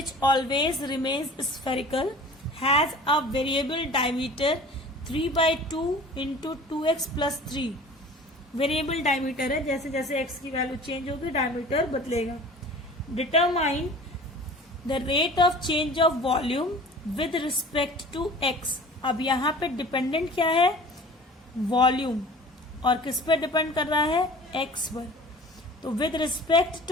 always remains spherical has a variable diameter 3/2 × 2x + 3। Variable diameter है, जैसे जैसे x की वैल्यू चेंज होगी डायमीटर बदलेगा। Determine the rate of change of volume with respect to x। अब यहाँ पे dependent क्या है, वॉल्यूम, और किस पे डिपेंड कर रहा है, x पर। तो विद रिस्पेक्ट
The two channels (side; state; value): both; normal; correlation 0.43